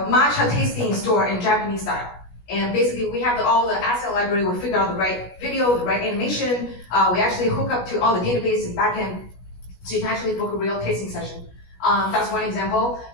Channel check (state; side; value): late; right; 16 ms